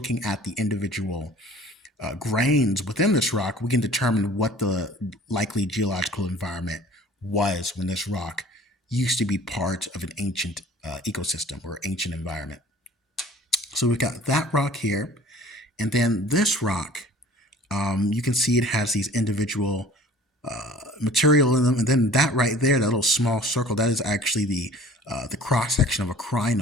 at the individual grains within this rock, we can determine what the likely geological environment was when this rock used to be part of an ancient ecosystem or ancient environment. So we've got that rock here, and then this rock, you can see it has these individual material in them, and then that right there, that little small circle, that is actually the cross section of a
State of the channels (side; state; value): both; normal; correlation 0.49